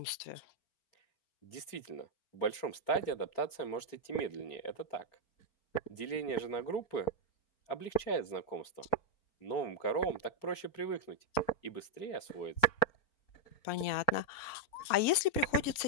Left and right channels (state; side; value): late; right; 4.4 ms